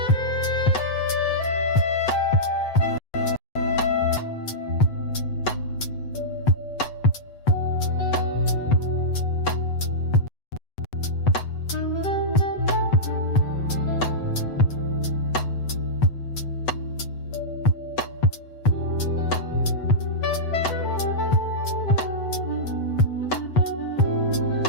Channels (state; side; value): late; right; 7.9 ms